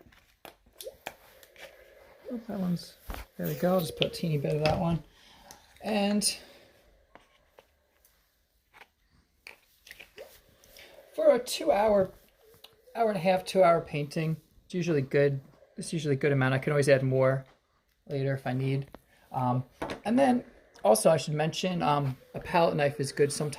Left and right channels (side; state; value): both; identical; correlation 1.00